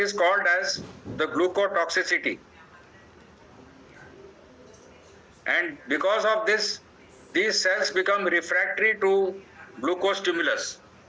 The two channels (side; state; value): both; identical; correlation 1.00